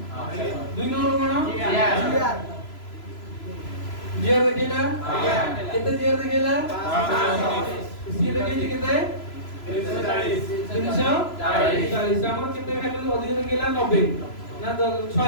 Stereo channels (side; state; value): right; late; 3.0 ms